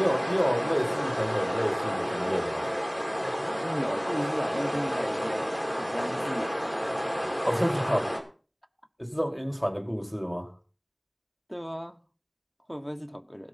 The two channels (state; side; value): identical; both; correlation 1.00